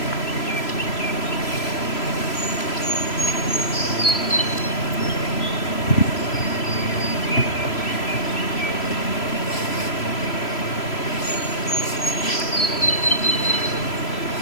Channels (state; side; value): late; right; 3.0 ms